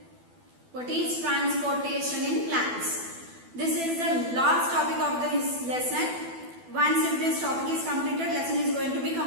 What is transportation in plants? This is the last topic of this lesson. Once if this topic is completed, lesson is going to be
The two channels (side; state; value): left; late; 12 ms